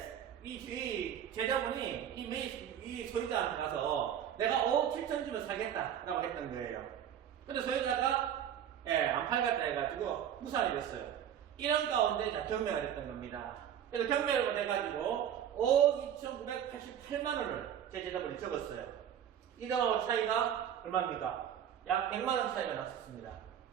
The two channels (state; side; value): quieter; left; 9.6 dB